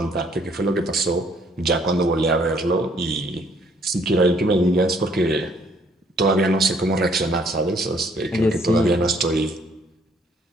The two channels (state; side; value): normal; both; correlation 0.64